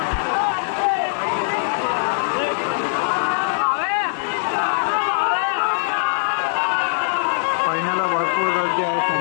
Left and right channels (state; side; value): silent; right; 65 dB below the other